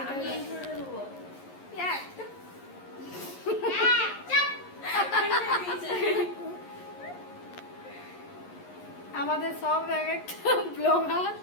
আমাদের সব এক একটা ব্লগার।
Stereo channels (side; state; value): right; late; 11 ms